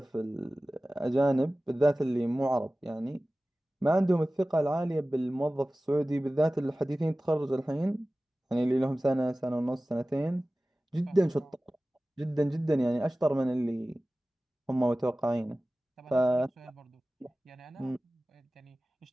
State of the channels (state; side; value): normal; both; correlation 0.97